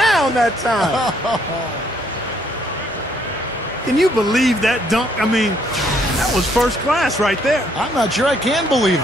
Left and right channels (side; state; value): both; normal; correlation 0.68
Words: that time. Can you believe that dunk? I mean, that was first class right there. I'm not sure I can believe